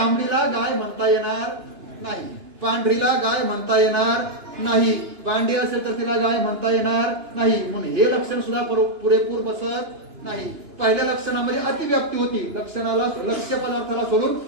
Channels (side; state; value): left; late; 2.9 ms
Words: गाय म्हणता येणार नाही, पांढरीला गाय म्हणता येणार नाही, बांडी असेल तर तिला गाय म्हणता येणार नाही. म्हणून हे लक्षण सुद्धा पुरेपूर बसत नाही. पहिल्या लक्षणामध्ये अतिव्याप्ती होती. लक्षणाला लक्ष्य पदार्थाला सोडून